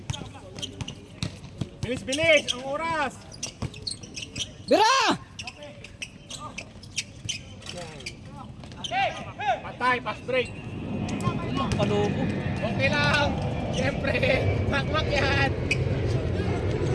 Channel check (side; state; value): both; identical; correlation 1.00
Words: Bilis, ang oras. Bira! Patay, pass break. Palubo. Okay lang. Siyempre, makmak yan.